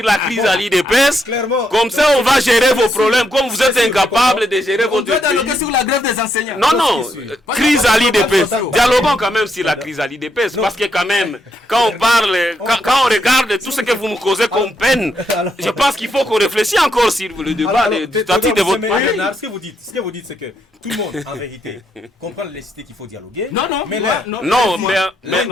la crise à l'IDPS. Comme ça, on va gérer vos problèmes. Comme vous êtes incapable de gérer votre pays. On doit dialoguer sur la grève des enseignants. Non, crise à l'IDPS. Dialoguons quand même sur la crise à l'IDPS. Parce que quand même, quand on parle, quand on regarde tout ce que vous nous causez comme peine, je pense qu'il faut qu'on réfléchisse encore sur le débat du statut de votre pays. Ce que vous dites, c'est que tout le monde, en vérité, comprend la nécessité qu'il faut dialoguer. Non,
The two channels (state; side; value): normal; both; correlation 0.78